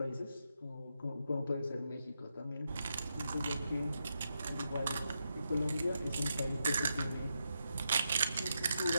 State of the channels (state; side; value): inverted; both; correlation -0.84